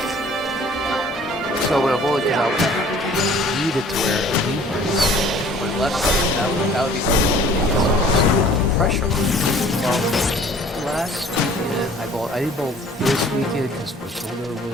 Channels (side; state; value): both; normal; correlation 0.52